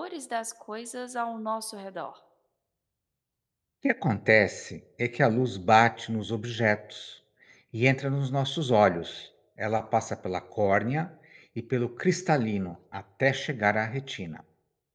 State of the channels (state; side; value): identical; both; correlation 1.00